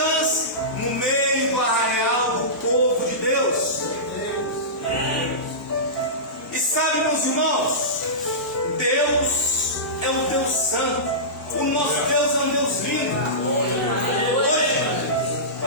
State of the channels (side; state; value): both; normal; correlation -0.19